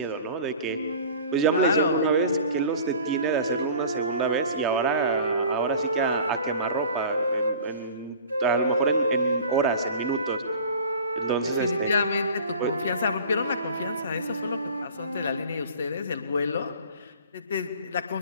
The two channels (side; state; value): both; inverted; correlation -0.42